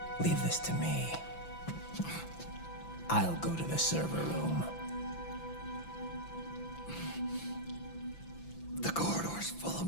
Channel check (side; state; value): right; late; 5.9 ms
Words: leave this to me. I'll go to the server room. The corridor's full